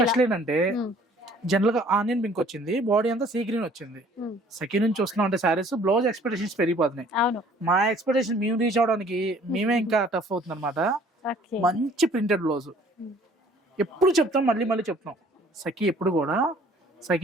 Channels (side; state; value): both; normal; correlation 0.55